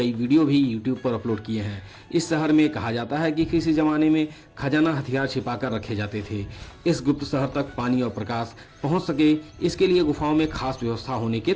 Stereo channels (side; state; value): both; identical; correlation 1.00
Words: वीडियो भी यूट्यूब पर अपलोड किए हैं। इस शहर में कहा जाता है कि किसी ज़माने में खजाना हथियार छिपाकर रखे जाते थे। इस गुप्त शहर तक पानी और प्रकाश पहुँच सके, इसके लिए गुफाओं में खास व्यवस्था होने के